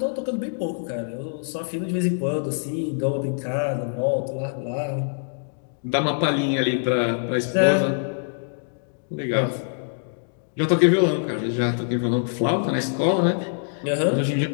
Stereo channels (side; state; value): right; silent; digital silence